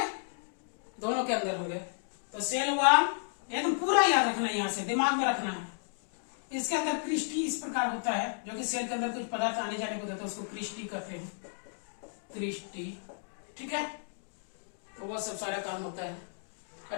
दोनों के अंदर होंगे। तो सेल वॉल एकदम पूरा याद रखना है, यहां से दिमाग में रखना है। इसके अंदर क्रिस्टी इस प्रकार होता है, जो कि सेल के अंदर कुछ पदार्थ आने जाने को देता है, उसको क्रिस्टी कहते हैं। क्रिस्टी। ठीक है, तो वो सब सारा काम होता है।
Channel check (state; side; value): silent; right; digital silence